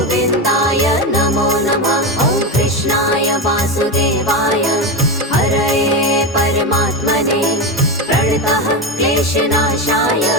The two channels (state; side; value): normal; both; correlation 0.16